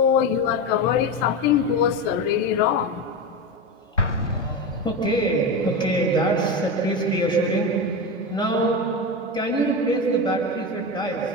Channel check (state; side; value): normal; both; correlation 0.19